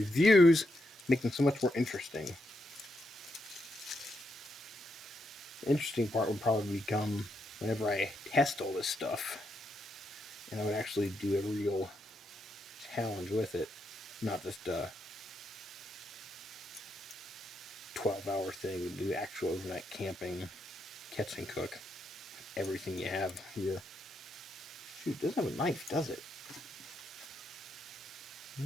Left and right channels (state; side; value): normal; both; correlation 0.81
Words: make them so much more interesting. The interesting part would probably become whenever I test all this stuff and I would actually do a real challenge with it, not just a 12-hour thing. Do actual overnight camping, catch and cook, everything you have here. Shoot, it doesn't have a knife, does it?